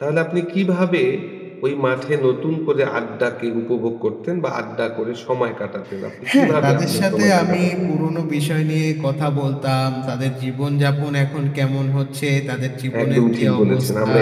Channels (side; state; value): both; identical; correlation 1.00